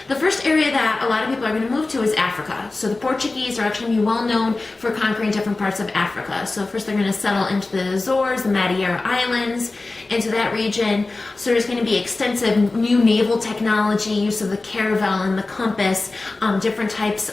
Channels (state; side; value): quieter; right; 3.3 dB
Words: The first area that a lot of people are going to move to is Africa. So the Portuguese are actually going to be well known for conquering different parts of Africa. So first they're going to settle into the Azores, the Madeira Islands, into that region. So there's going to be extensive new naval technology, use of the caravel and the compass, different types